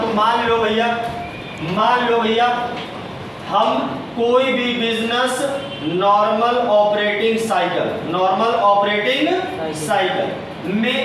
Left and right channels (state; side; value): identical; both; correlation 1.00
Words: को, मान लो भैया हम कोई भी बिजनेस नॉर्मल ऑपरेटिंग साइकिल में